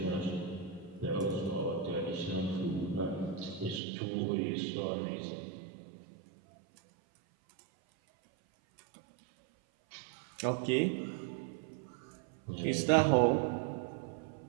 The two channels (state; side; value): drops out; left; at 3.8 s